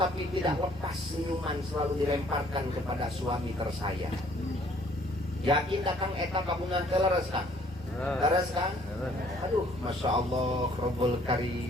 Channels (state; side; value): normal; both; correlation 0.60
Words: tidak lepas senyuman selalu dilemparkan kepada suami tersayang. Yakin dah Kang eta kabungan teh leres Kang? Leres Kang? Aduh Masya Allah Rabbul